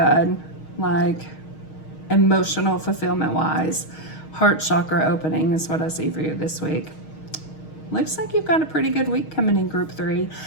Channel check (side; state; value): right; late; 6.4 ms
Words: like emotional fulfillment wise, heart chakra opening is what I see for you this week. Looks like you've got a pretty good week coming in, group 3.